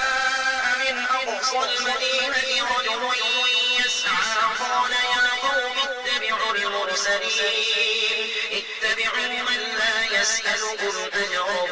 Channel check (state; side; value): identical; both; correlation 1.00